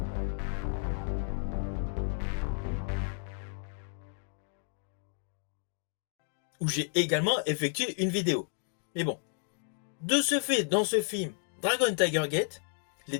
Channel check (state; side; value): silent; right; 56 dB below the other